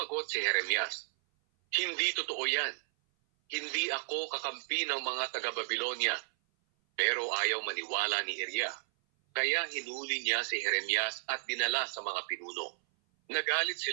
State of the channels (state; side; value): silent; left; 56 dB below the other